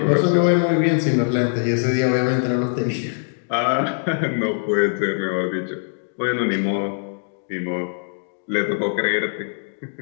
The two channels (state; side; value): silent; right; digital silence